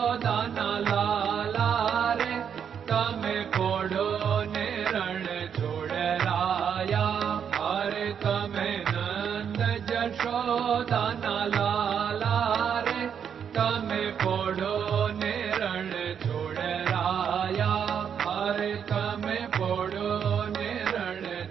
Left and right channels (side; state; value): left; quieter; 7.8 dB